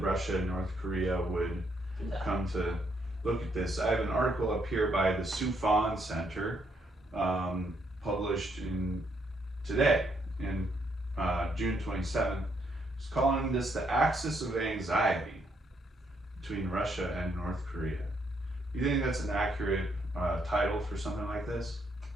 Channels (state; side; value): normal; both; correlation 0.73